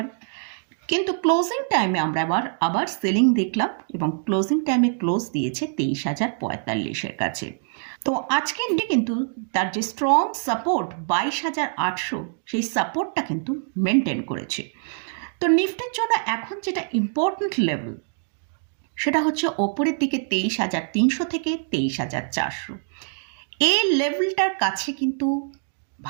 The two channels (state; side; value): silent; left; 62 dB below the other